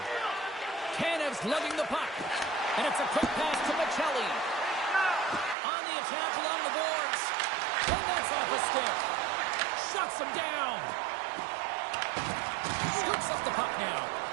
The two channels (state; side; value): drops out; left; at 5.6 s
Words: stick. Shuts him down. Scoops up the puck now.